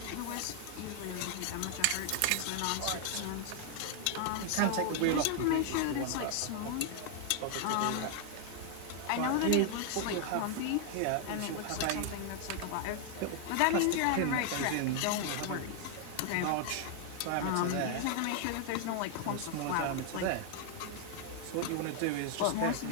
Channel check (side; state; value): both; different; correlation 0.00